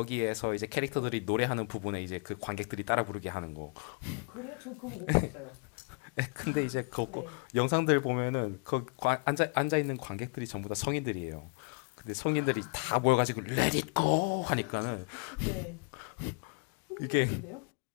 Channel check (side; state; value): right; quieter; 35.1 dB